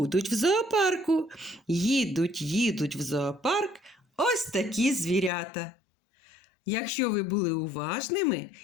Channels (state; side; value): drops out; right; at 5.3 s